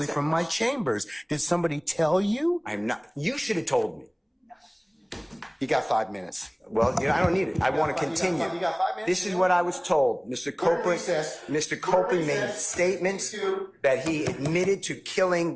from my chambers? Did somebody tell you? I'm not. You should have told me. You got 5 minutes. Well, I don't need it. I want to continue. You got 5 minutes? This is what I was told. Mr. Copeland made statements that he admitted to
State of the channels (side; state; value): both; identical; correlation 1.00